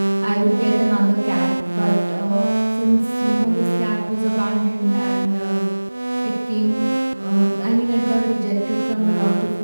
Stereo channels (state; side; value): inverted; both; correlation -1.00